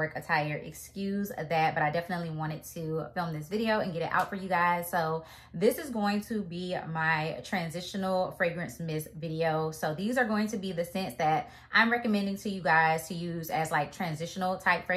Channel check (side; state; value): both; identical; correlation 1.00